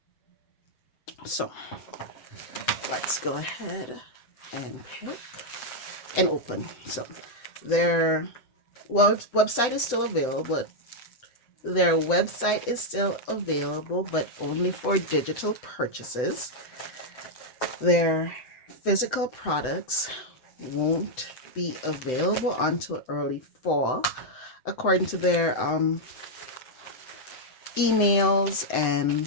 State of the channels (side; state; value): right; late; 7.9 ms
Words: So let's go ahead and pick and open. So their website is still available, but their website is still available, but only for digital purchases. Their physical products won't be available until early fall, according to their emails and